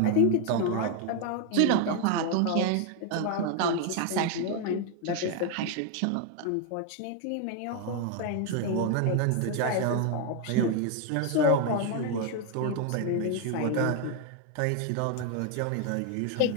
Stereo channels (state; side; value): different; both; correlation 0.01